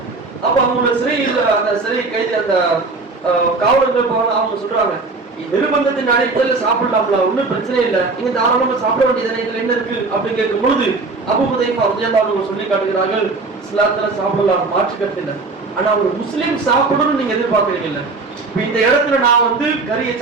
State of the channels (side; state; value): left; quieter; 3.8 dB